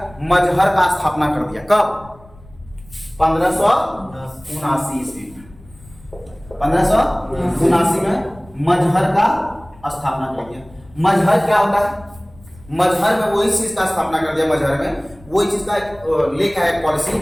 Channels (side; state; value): left; noise; rumble, 24 dB below the sound